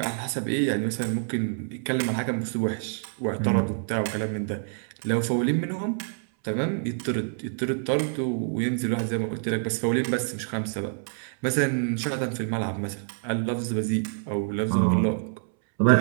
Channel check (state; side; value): silent; left; 60 dB below the other